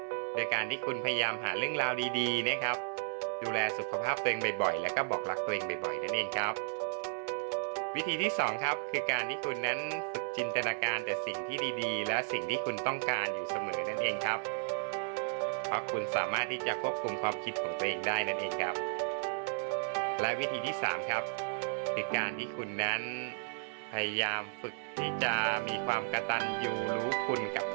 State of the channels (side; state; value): left; silent; 55 dB below the other